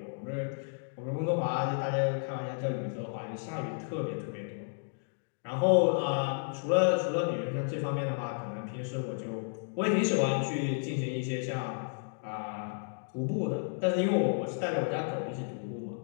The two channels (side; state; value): right; silent; digital silence